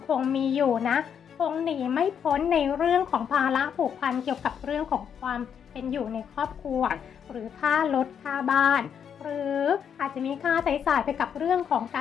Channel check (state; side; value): quieter; right; 7.9 dB